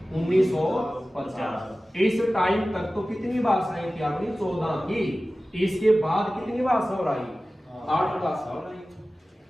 1950। इस टाइम तक तो कितनी भाषाएं थी अपनी? 14 थी। इसके बाद कितनी भाषा हो रही? 8 भाषा हो रही।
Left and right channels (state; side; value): normal; both; correlation 0.96